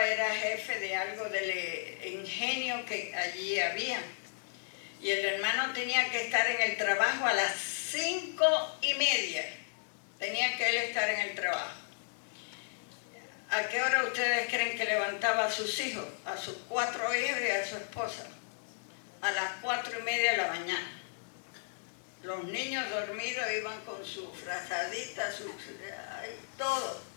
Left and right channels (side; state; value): right; silent; digital silence